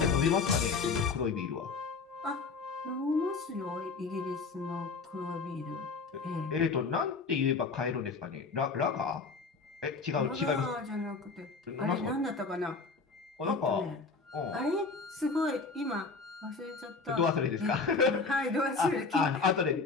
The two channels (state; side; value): quieter; right; 4.4 dB